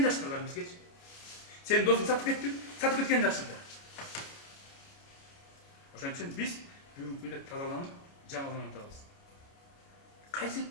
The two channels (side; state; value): right; late; 29 ms